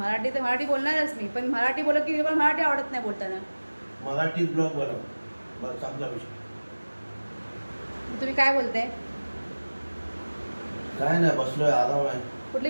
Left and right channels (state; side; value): inverted; both; correlation -1.00